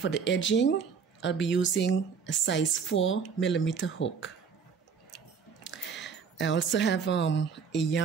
the edging, I'll be using a size 4mm hook. I also have a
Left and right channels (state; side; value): quieter; left; 6.2 dB